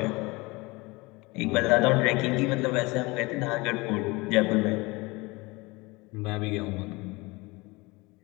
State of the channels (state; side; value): quieter; right; 24.0 dB